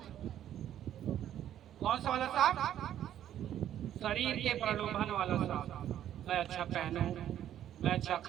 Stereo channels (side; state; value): left; quieter; 11.1 dB